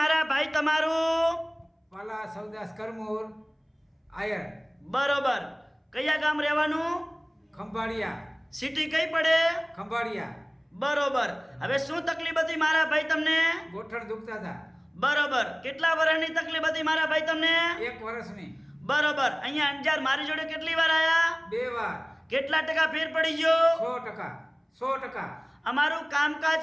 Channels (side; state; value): both; identical; correlation 1.00